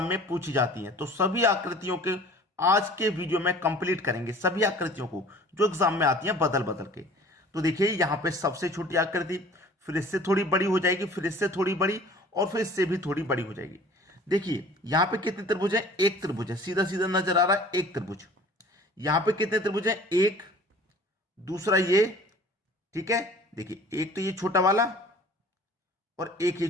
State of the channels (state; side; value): normal; both; correlation 0.48